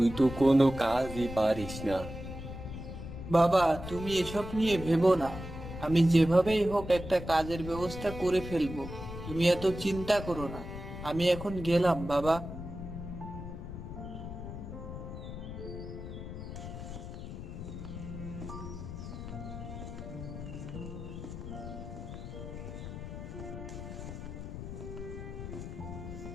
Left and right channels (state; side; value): noise; left; rumble, 9 dB below the sound